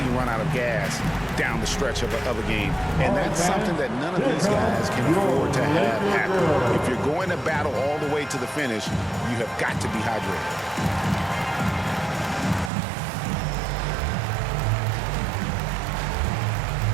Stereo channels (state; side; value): drops out; left; at 12.7 s